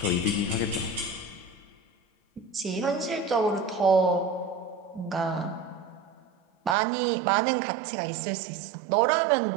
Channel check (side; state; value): left; drops out; at 6.8 s